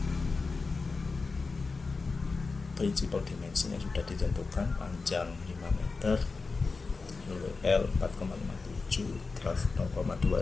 Principal dimensinya sudah ditentukan, panjang 5 meter, LWL 4,57, draft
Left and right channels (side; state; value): right; quieter; 4.2 dB